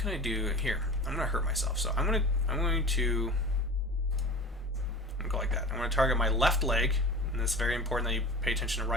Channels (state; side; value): normal; both; correlation 0.36